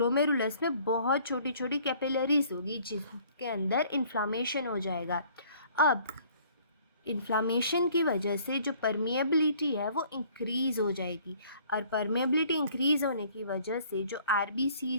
में बहुत छोटी छोटी कैपिलरीज होगी जिसके अंदर इन्फ्लामेशन हो जाएगा। अब इन्फ्लामेशन की वजह से जो परमिएबिलिटी है वो इंक्रीज़ हो जाएगी, और परमिएबिलिटी इंक्रीज़ होने की वजह से जो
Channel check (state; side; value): inverted; both; correlation -0.56